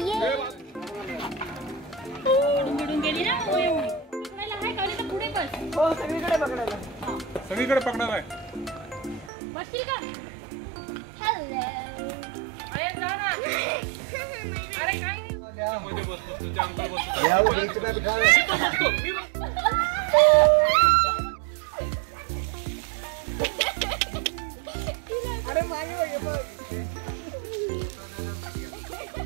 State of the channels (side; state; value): left; drops out; at 9.3 s